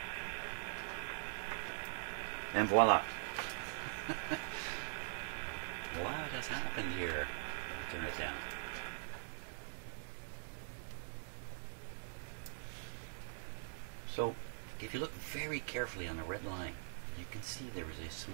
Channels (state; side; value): silent; left; digital silence